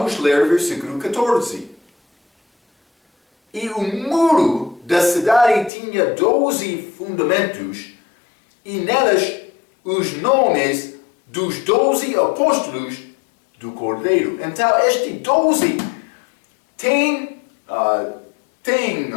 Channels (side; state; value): right; drops out; at 5.7 s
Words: ler o versículo 14. E o muro da cidade tinha 12 fundamentos, e nelas os nomes dos 12 apóstolos do Cordeiro. Então, este 12 tem